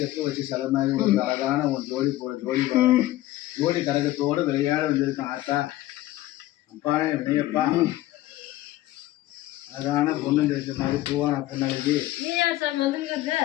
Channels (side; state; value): right; quieter; 15.8 dB